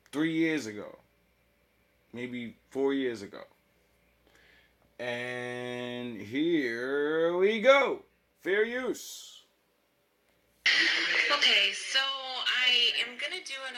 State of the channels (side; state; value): both; identical; correlation 1.00